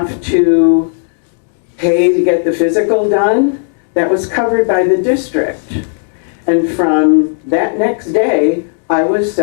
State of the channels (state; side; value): silent; right; 70 dB below the other